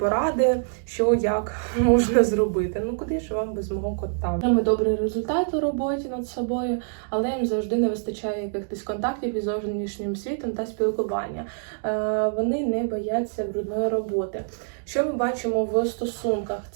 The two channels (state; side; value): silent; left; digital silence